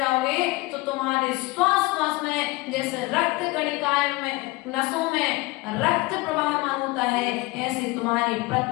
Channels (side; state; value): right; quieter; 22.4 dB